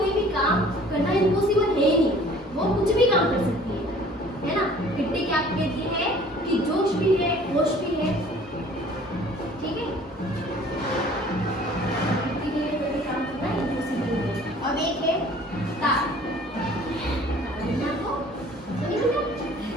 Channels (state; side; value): normal; both; correlation 0.51